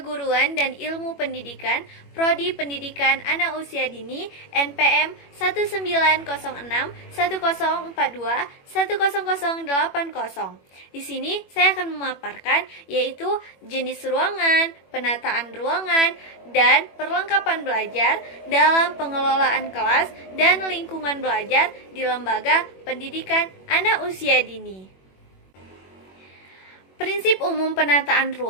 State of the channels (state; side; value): late; right; 21 ms